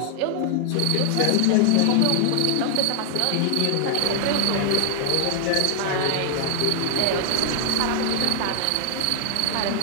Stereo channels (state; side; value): different; both; correlation 0.00